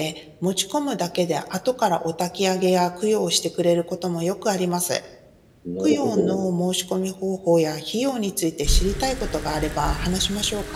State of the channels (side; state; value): both; identical; correlation 1.00